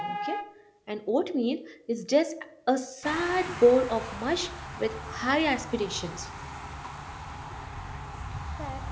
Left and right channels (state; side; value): identical; both; correlation 1.00